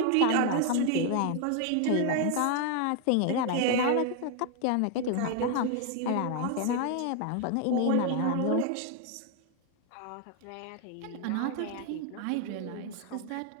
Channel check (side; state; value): both; different; correlation 0.01